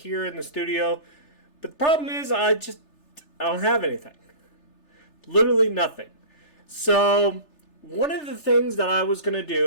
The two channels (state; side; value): late; right; 3.3 ms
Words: in the studio. But the problem is I don't have anything. Literally nothing. So one of the things that I was going to